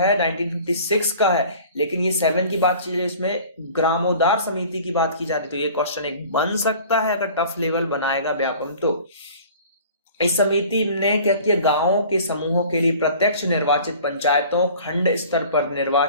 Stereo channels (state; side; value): inverted; both; correlation -0.46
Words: 1956 का है, लेकिन ये 7 की बात चल रही है, इसमें ग्रामोद्धार समिति की बात की जा रही है। तो ये क्वेश्चन एक बन सकता है अगर टफ लेवल बनाएगा व्यापम। तो इस समिति ने क्या किया, गांवों के समूहों के लिए प्रत्यक्ष निर्वाचित पंचायतों, खंड स्तर पर